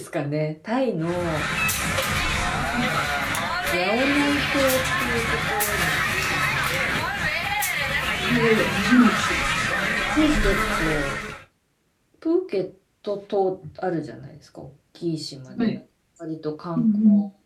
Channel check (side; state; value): both; identical; correlation 1.00